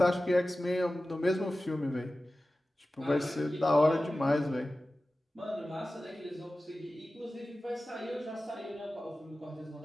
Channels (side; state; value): both; normal; correlation 0.95